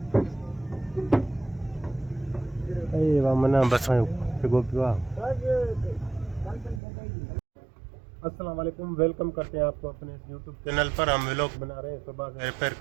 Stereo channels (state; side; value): drops out; left; at 6.8 s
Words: मना बस पियो आहे। अस्सलाम वालेकुम, वेलकम करते हैं आपको अपने यूट्यूब चैनल पर। हम व्लॉग बना रहे हैं, सुबह से रिपेयर